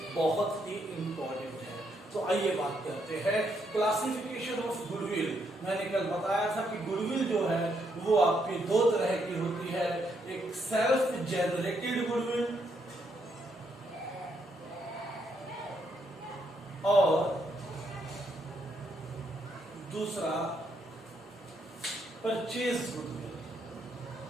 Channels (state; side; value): normal; both; correlation 0.76